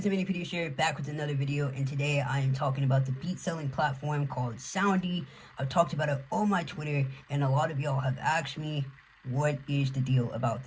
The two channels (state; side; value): identical; both; correlation 1.00